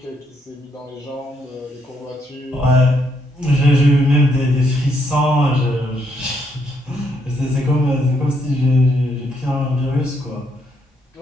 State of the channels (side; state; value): both; normal; correlation 0.74